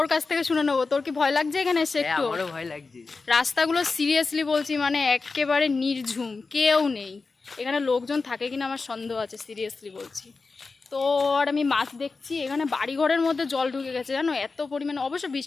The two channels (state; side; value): quieter; right; 4.2 dB